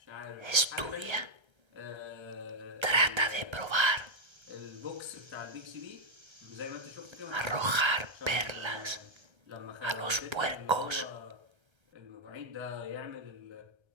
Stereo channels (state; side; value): late; left; 1.3 ms